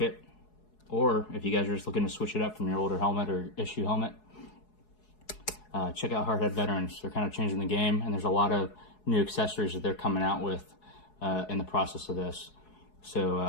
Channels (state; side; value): late; right; 4.7 ms